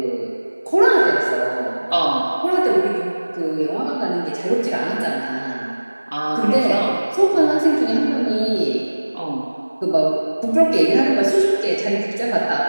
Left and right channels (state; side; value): inverted; both; correlation -1.00